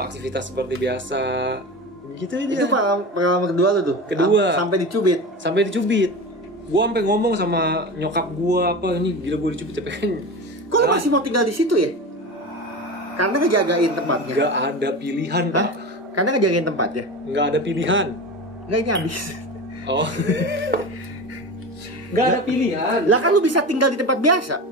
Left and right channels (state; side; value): normal; both; correlation 0.28